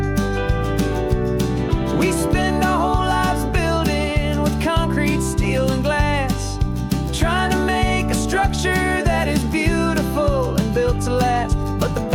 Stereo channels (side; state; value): both; identical; correlation 1.00